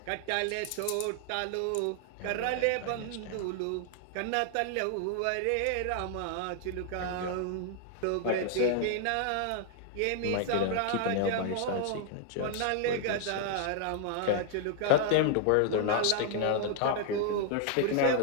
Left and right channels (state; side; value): different; both; correlation 0.00